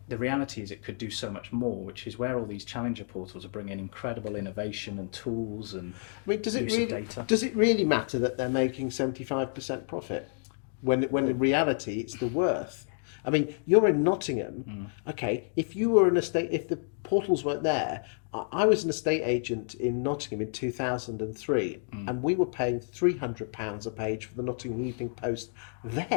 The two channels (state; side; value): silent; right; 58 dB below the other